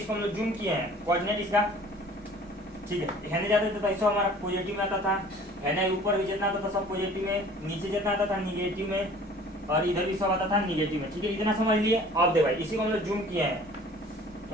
हम लोग जूम किए हैं कोऑर्डिनेट इसका। ठीक है, हेने जाते थे तो ऐसा हमारा पॉजिटिव में आता था, हेने ऊपर भी जितना आता था सब पॉजिटिव में, नीचे जितना आता था निगेटिव में, और इधर भी सब आता था निगेटिव में। ठीक है, इतना समझ लिए। अब दे भाई इसी को हम लोग जूम किए हैं,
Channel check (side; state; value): both; normal; correlation 0.49